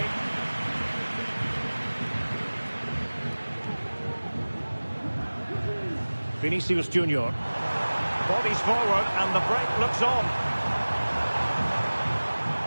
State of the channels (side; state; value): both; inverted; correlation -1.00